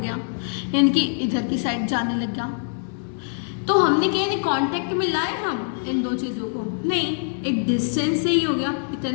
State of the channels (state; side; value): silent; right; 63 dB below the other